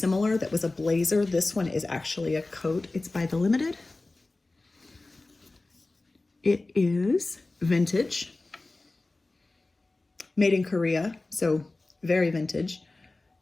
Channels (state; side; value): quieter; right; 3.1 dB